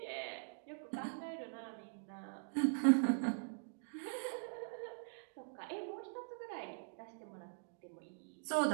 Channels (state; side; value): silent; left; digital silence